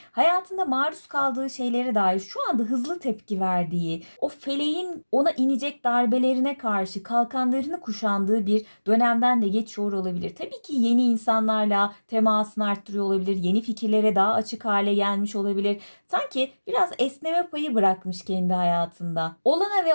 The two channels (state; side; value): inverted; both; correlation -1.00